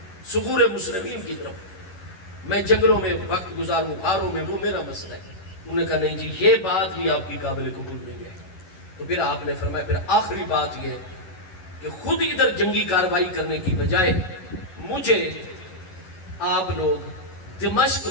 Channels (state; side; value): late; right; 11 ms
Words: ثغور مسلمین کی طرف، میں جنگلوں میں وقت گزاروں، غاروں میں، وہ میرا مسئلہ ہے۔ انہوں نے کہا نہیں جی یہ بات بھی آپ کی قابل قبول نہیں ہے۔ تو پھر آپ نے فرمایا پھر آخری بات یہ ہے کہ خود ادھر جنگی کارروائی کرنے کی بجائے مجھے آپ لوگ دمشق